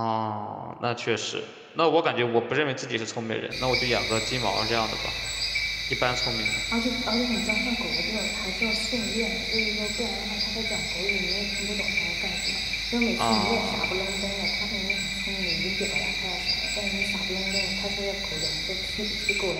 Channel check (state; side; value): identical; both; correlation 1.00